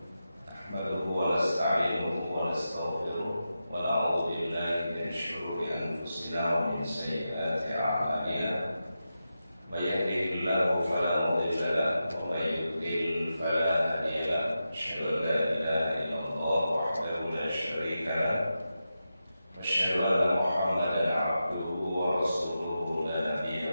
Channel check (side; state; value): both; inverted; correlation -0.90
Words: Nahmaduhu wa nasta'inuhu wa nastaghfiruh wa na'udzu billahi min shururi anfusina wa min sayyiati a'malina. May yahdihillahu fala mudilla lahu wa may yudlil fala hadiya lahu. Asyhadu an la ilaha illallah wahdahu la syarika lahu. أشهد أن محمدا عبده ورسوله لا نبي